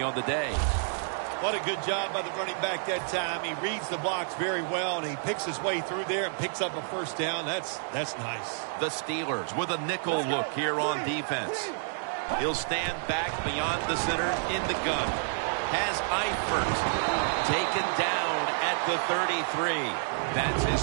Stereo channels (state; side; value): silent; left; digital silence